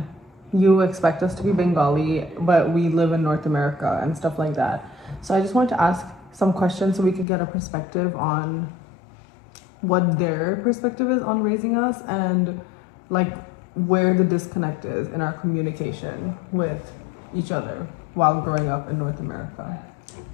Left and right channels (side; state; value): right; drops out; at 7.2 s